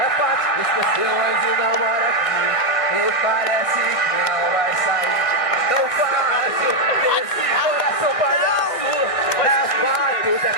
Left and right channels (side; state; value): right; late; 1.7 ms